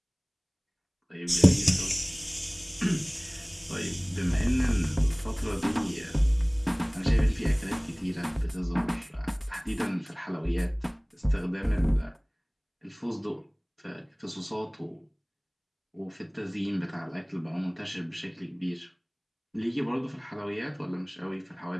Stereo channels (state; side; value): identical; both; correlation 1.00